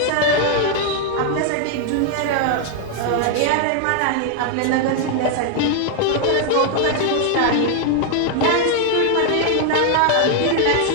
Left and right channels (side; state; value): both; different; correlation 0.00